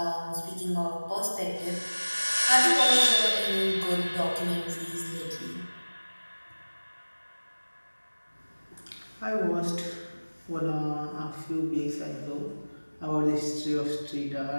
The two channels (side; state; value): both; inverted; correlation -1.00